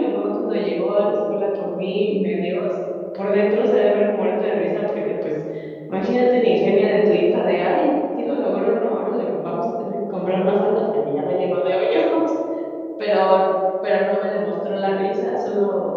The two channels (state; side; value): identical; both; correlation 1.00